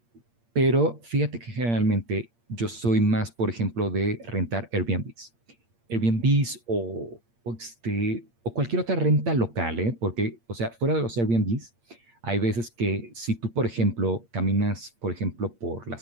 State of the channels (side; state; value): left; late; 8.6 ms